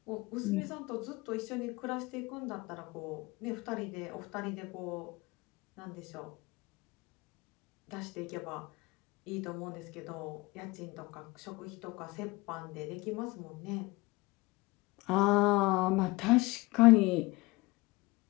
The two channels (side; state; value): right; quieter; 22.6 dB